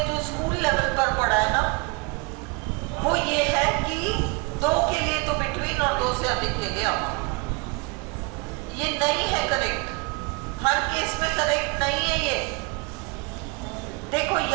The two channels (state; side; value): quieter; left; 29.7 dB